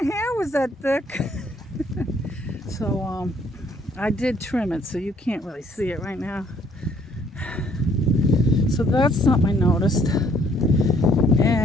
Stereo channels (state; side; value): normal; both; correlation 0.64